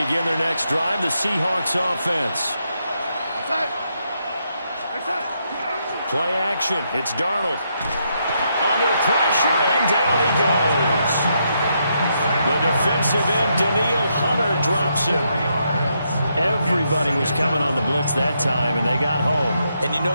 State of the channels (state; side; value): inverted; both; correlation -0.79